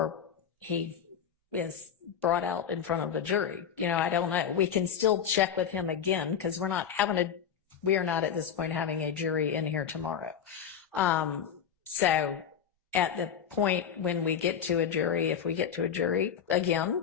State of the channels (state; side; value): quieter; right; 8.1 dB